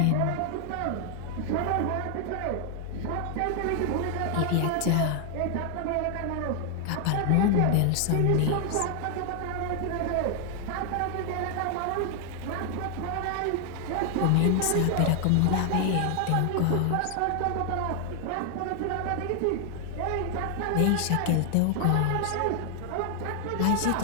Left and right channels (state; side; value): different; both; correlation 0.00